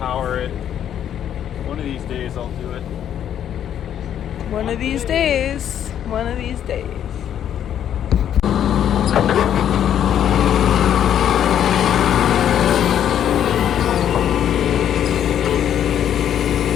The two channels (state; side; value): quieter; right; 9.9 dB